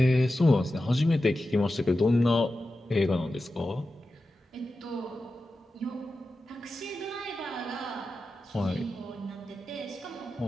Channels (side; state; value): both; normal; correlation 0.92